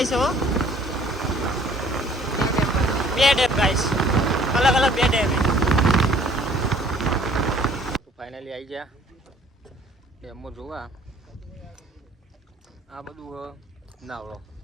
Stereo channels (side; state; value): both; normal; correlation 0.56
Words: છે હો બે ડેમ ગાઈસ અલગ અલગ બે ડેમ ફાઇનલી આવી ગયા ડેમમાં જોવા આ બધું નાવડો